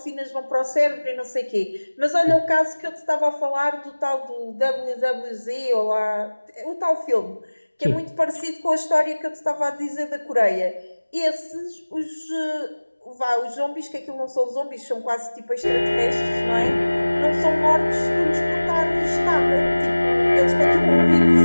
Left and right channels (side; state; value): both; inverted; correlation -1.00